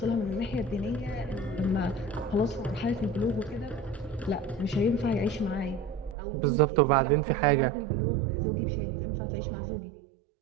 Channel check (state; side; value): drops out; left; at 6.2 s